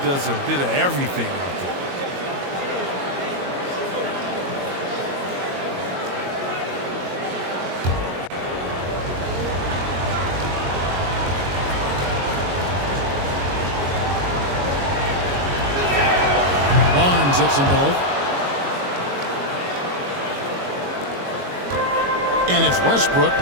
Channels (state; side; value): late; left; 22 ms